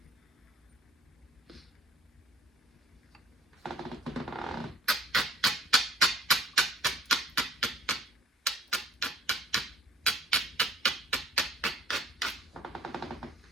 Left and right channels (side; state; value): both; normal; correlation 0.53